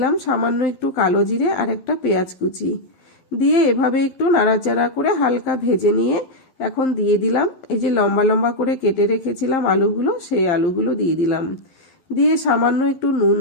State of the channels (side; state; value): right; late; 11 ms